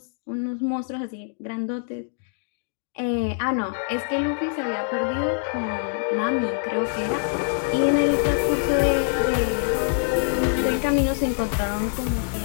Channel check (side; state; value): right; silent; digital silence